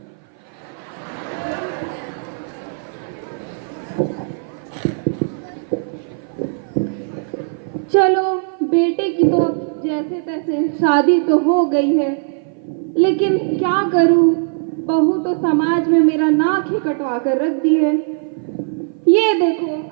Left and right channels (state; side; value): silent; left; 56 dB below the other